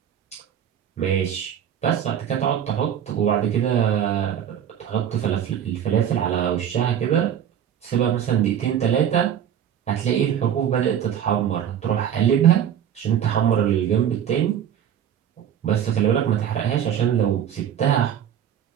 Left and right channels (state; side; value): quieter; left; 9.5 dB